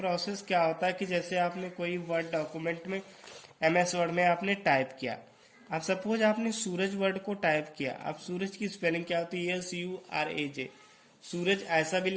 क्या होता है कि जैसे आपने कोई वर्ड डॉक्यूमेंट में MS वर्ड में आपने टाइप किया, अब सपोज आपने सूरज वर्ड को टाइप किया, अब सूरज की स्पेलिंग क्या होती है? SURAJ। सूरज ऐसा भी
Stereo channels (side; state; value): both; identical; correlation 1.00